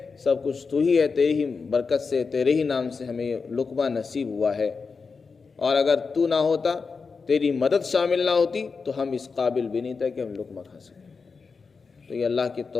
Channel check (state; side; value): quieter; right; 4.9 dB